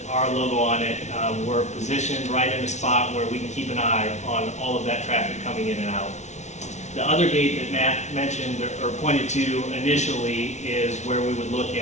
our logo on it, we're positioned right in a spot where we can keep an eye on all of that traffic coming in and out. The other gate that Matt mentioned or pointed to initially is where we would look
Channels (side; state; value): right; late; 0.33 ms